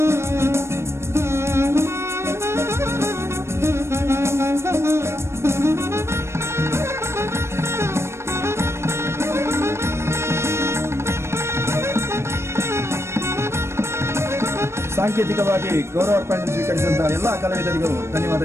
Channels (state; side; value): late; left; 0.13 ms